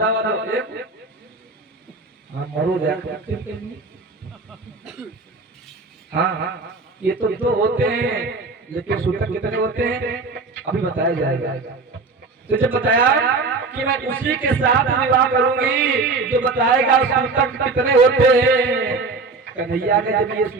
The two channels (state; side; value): quieter; left; 3.9 dB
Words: वाला, एक हाँ मरो हाँ ये तो दो होते हैं, लेकिन सूतक कितने होते हैं अभी बताया जाएगा। तो जब बताया कि मैं उसी के साथ विवाह करूंगी जो बताएगा सूतक कितने होते हैं। कन्हैया ने जब ये